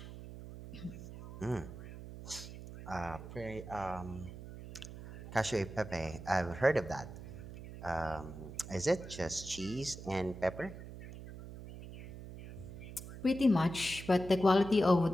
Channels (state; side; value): noise; right; hum, 12 dB below the sound